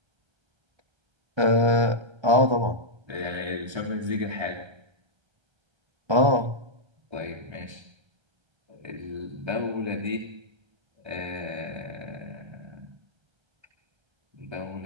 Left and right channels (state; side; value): late; left; 1.3 ms